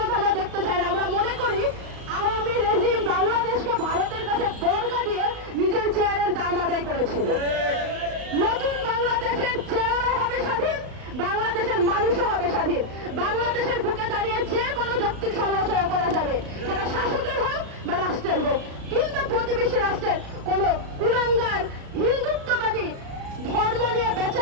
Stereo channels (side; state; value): left; late; 35 ms